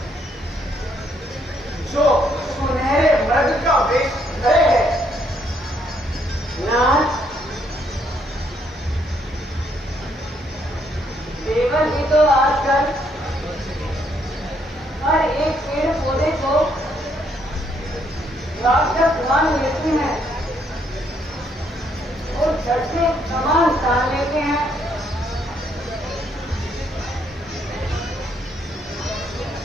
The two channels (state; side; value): normal; both; correlation 0.71